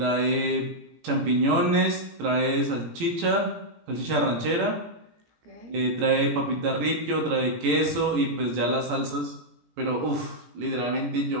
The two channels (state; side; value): late; left; 17 ms